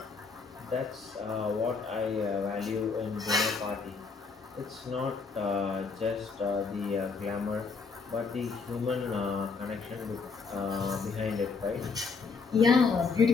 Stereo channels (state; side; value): quieter; right; 4.8 dB